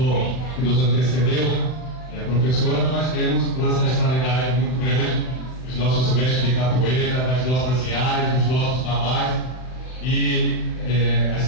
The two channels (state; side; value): late; right; 39 ms